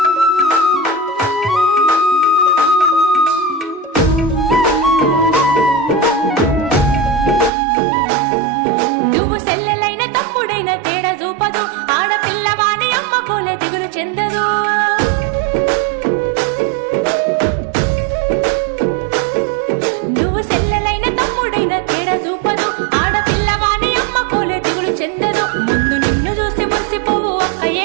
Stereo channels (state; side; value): drops out; left; at 7.5 s